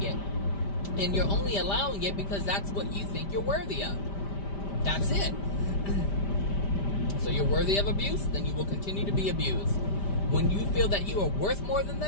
it. And you're only allowing it because that's what you think you're worthy of. That's it. So you're worthy of abuse, then you will continue to be abused. When you feel that you are worth more than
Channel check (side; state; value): right; late; 5.1 ms